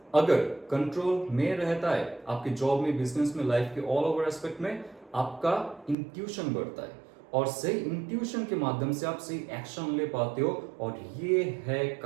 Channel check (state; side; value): drops out; left; at 6.0 s